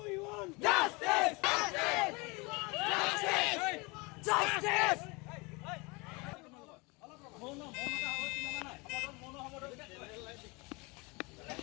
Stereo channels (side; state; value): right; quieter; 26.9 dB